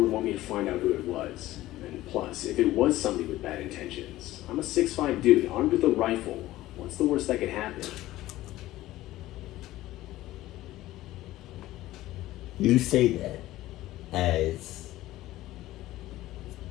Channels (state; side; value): quieter; right; 16.0 dB